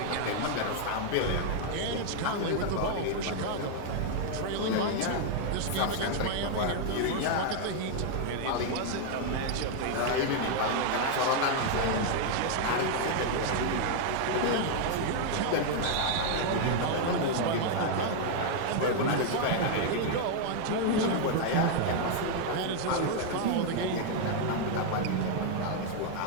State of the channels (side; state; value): both; different; correlation 0.00